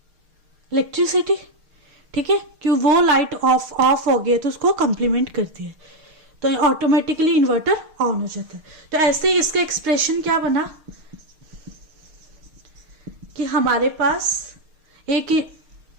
इलेक्ट्रिसिटी। ठीक है, क्यों? वो लाइट ऑफ हो गई तो उसको कंप्लीमेंट करती है, तो ऑटोमेटिकली इन्वर्टर ऑन हो जाता है। तो ऐसे ही इसका एक्सप्रेशन क्या बना कि हमारे पास एक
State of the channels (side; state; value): left; late; 6.5 ms